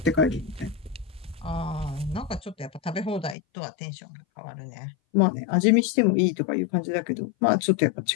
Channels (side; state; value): right; drops out; at 3.4 s